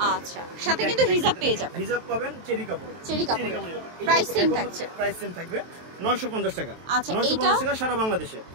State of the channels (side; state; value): left; late; 23 ms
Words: আচ্ছা, সাথে কিন্তু হিজাব পেয়ে যাবেন। হিজাব পাবেন চেরি কাপড়। প্রাইস সেম থাকছে। প্রাইস সেম থাকবে 950 টাকা। আচ্ছা, 950 টাকা সারা বাংলাদেশে।